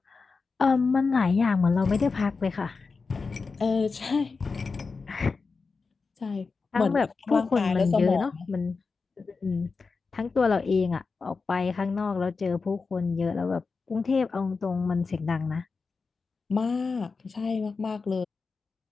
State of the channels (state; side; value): quieter; right; 4.5 dB